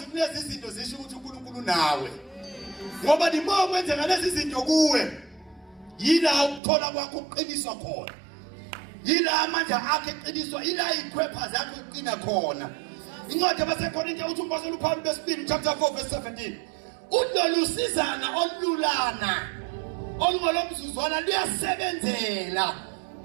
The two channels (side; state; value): left; drops out; at 6.6 s